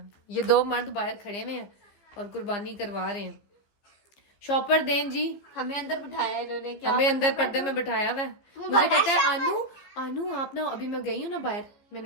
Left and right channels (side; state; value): right; late; 15 ms